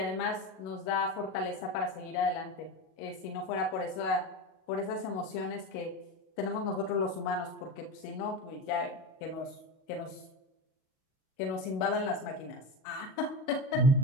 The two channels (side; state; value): right; late; 38 ms